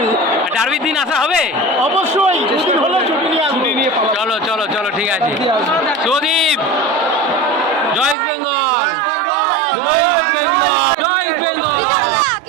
ডার্বির দিন আসা হবে অবশ্যই, দুদিন হলো ছুটি নিয়ে আসবো। চলো চলো চলো ঠিক আছে। সুদীপ, জয় ইস্ট বেঙ্গল, জয় ইস্ট বেঙ্গল, জয় ইস্ট বেঙ্গল।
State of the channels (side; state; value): left; drops out; at 8.2 s